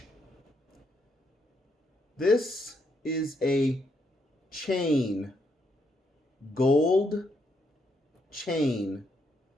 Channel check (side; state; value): both; normal; correlation 0.77